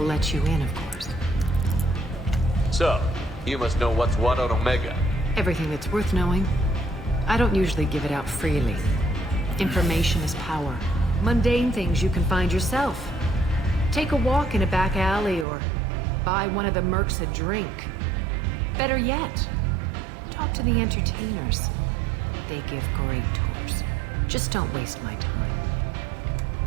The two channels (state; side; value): drops out; left; at 15.5 s